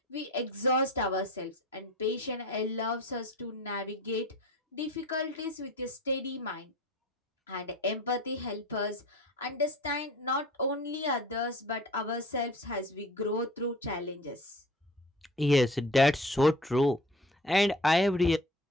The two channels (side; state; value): both; normal; correlation 0.42